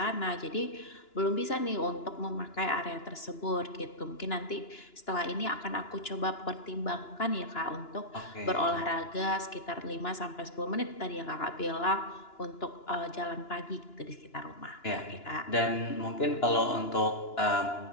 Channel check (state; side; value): late; right; 2.9 ms